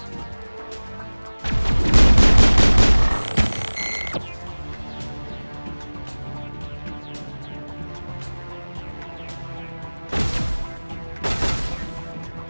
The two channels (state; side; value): inverted; both; correlation -1.00